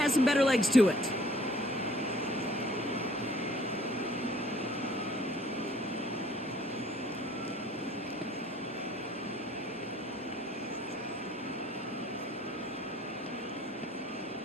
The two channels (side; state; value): both; normal; correlation 0.55